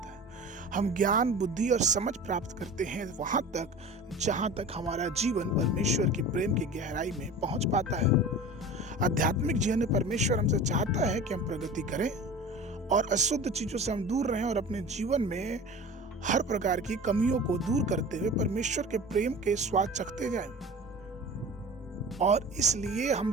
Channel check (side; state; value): both; normal; correlation 0.36